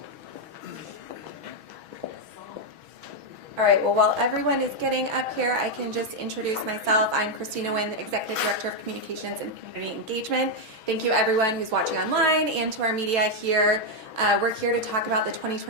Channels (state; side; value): late; left; 6.2 ms